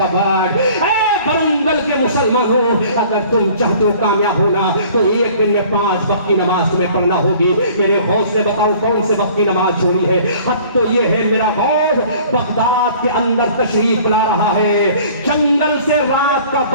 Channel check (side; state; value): both; inverted; correlation -0.51